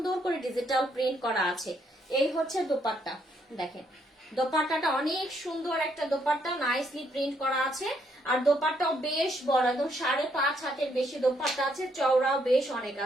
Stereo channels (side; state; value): both; normal; correlation 0.73